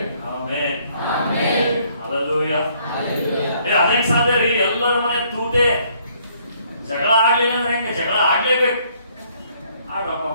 ಆಮೆನ್. ಹಲ್ಲೆಲೂಯಾ. ಅದೇನ್ ಸಾಧ್ಯ ರೀ? ಎಲ್ಲರ ಮನೆ ತೂತೆ. ಜಗಳ ಆಗ್ಲಿಲ್ಲ ಅಂದ್ರೆ ಹೆಂಗೆ? ಜಗಳ ಆಗ್ಲೇಬೇಕು. ಆಡ್ರಪ್ಪ.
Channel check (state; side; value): inverted; both; correlation -0.65